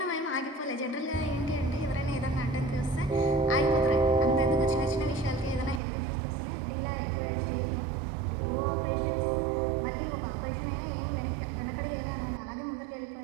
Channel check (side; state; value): left; drops out; at 5.8 s